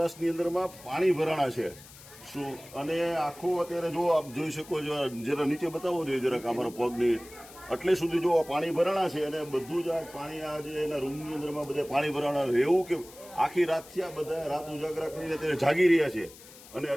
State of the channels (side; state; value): left; noise; hiss, 20 dB below the sound